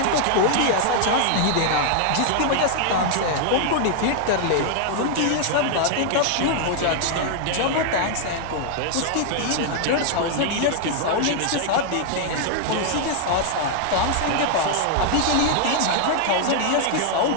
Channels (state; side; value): different; both; correlation 0.00